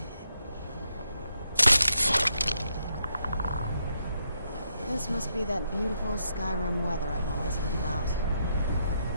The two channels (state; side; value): inverted; both; correlation -0.79